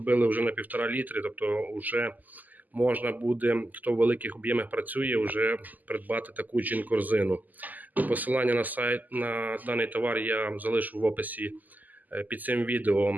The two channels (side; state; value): left; late; 0.082 ms